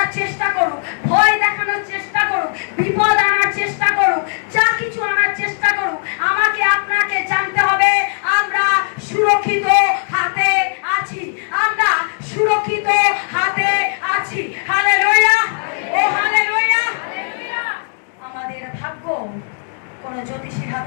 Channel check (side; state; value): right; silent; 63 dB below the other